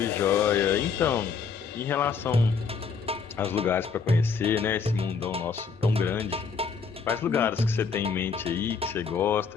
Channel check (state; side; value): quieter; right; 5.6 dB